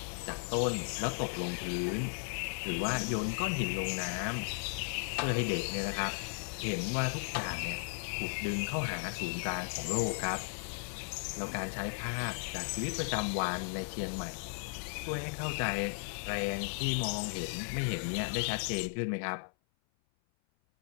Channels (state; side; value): silent; right; 54 dB below the other